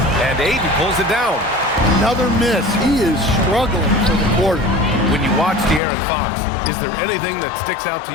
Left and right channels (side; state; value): right; drops out; at 5.8 s